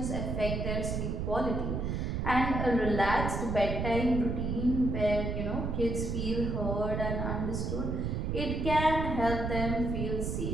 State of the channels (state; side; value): noise; right; rumble, 1 dB below the sound